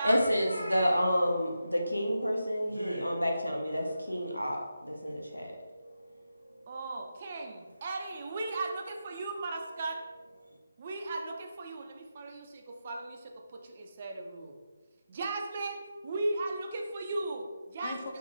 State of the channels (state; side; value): inverted; both; correlation -0.89